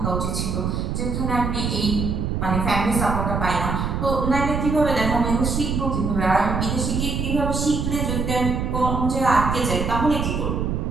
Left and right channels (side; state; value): right; noise; rumble, 1 dB below the sound